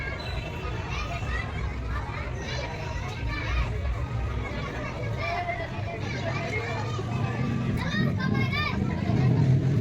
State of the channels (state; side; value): identical; both; correlation 1.00